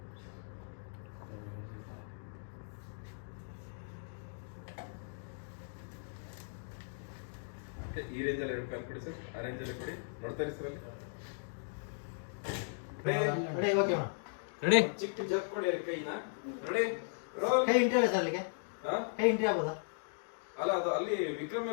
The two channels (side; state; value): right; silent; digital silence